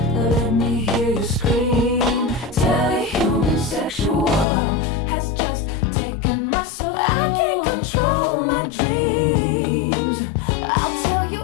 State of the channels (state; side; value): drops out; right; at 4.5 s